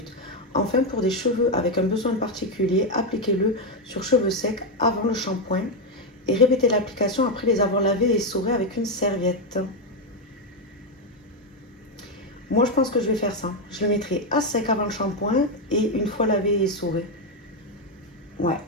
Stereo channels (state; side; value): normal; both; correlation 0.05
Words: Enfin, pour des cheveux avec un besoin particulier, appliquez-le sur cheveux secs avant le shampoing et répétez l'application après les avoir lavés et essorés avec une serviette. Moi, je pense que je vais faire ça. Je le mettrai à sec avant le shampoing et une fois lavé et essoré. Ouais,